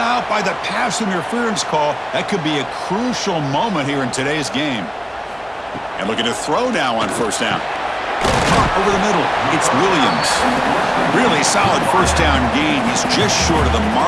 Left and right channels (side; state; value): both; identical; correlation 1.00